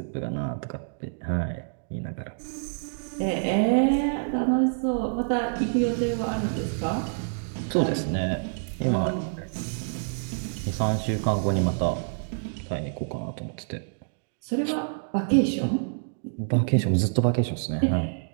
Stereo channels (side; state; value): left; silent; digital silence